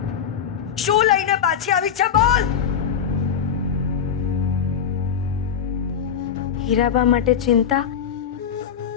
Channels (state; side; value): quieter; right; 8.0 dB